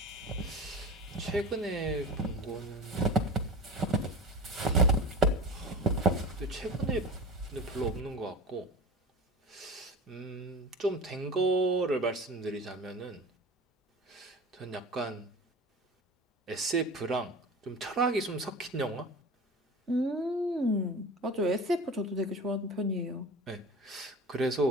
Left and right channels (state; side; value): normal; both; correlation 0.33